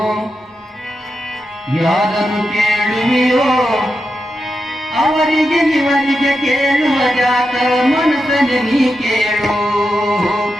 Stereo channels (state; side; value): normal; both; correlation 0.88